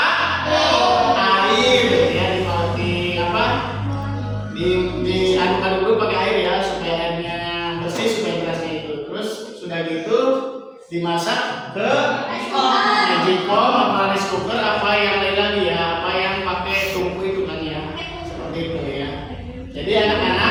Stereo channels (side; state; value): both; identical; correlation 1.00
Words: Air ya. Diaduk-aduk dulu pakai air ya, supaya airnya bersih, supaya berasnya itu. Terus sudah gitu dimasak ke magicom apa rice cooker, apa yang lain lagi ya, apa yang pakai tungku itu kan ya, seperti itu ya. Jadi